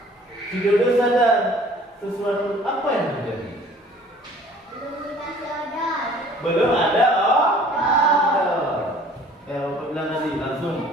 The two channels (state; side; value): normal; both; correlation 0.52